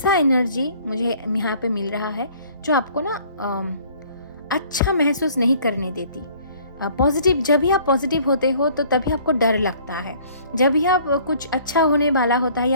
एनर्जी मुझे यहाँ पे मिल रहा है जो आपको ना अच्छा महसूस नहीं करने देती। पॉजिटिव, जब भी आप पॉजिटिव होते हो तो तभी आपको डर लगता है। जब भी आप कुछ अच्छा होने वाला होता है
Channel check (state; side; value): inverted; both; correlation -0.55